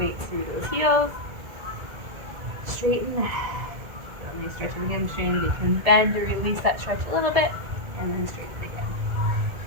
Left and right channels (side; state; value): left; late; 1.8 ms